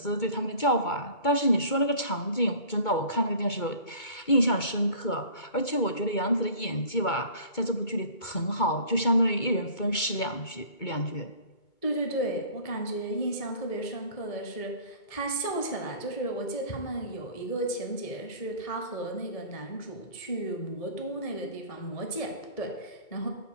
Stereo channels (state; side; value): late; right; 2.2 ms